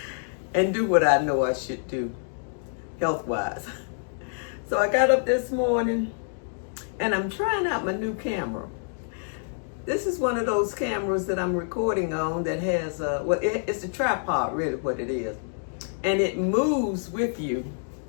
and do what I know I should do health-wise. So I got up this morning and I'm trying out my new camera. This is one of those cameras that I'm recording on that has, it's a tripod, really what it is. And it moves with you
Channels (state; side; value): silent; right; digital silence